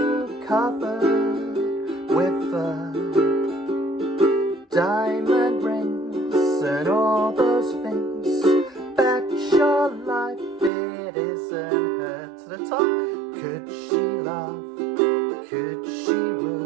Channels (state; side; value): drops out; left; at 10.7 s